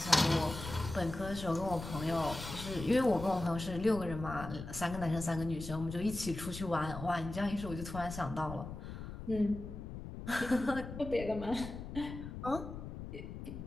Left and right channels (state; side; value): noise; left; rumble, 9 dB below the sound